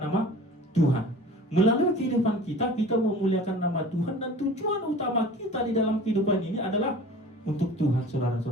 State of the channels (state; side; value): normal; both; correlation 0.42